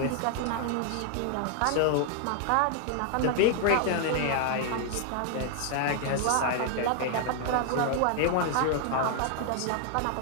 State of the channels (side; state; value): both; different; correlation 0.00